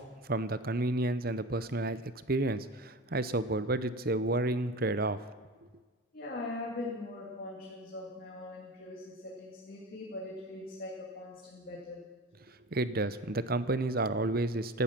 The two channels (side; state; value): both; normal; correlation 0.33